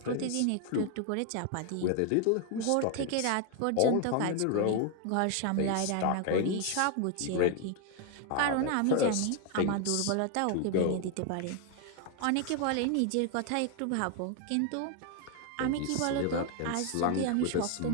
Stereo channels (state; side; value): different; both; correlation 0.01